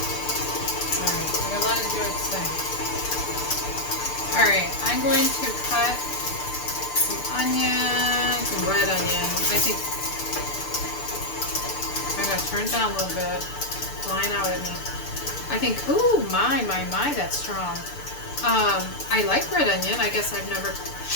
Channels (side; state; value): right; late; 6.8 ms